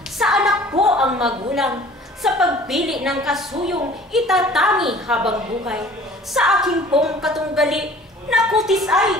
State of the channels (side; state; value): both; normal; correlation 0.49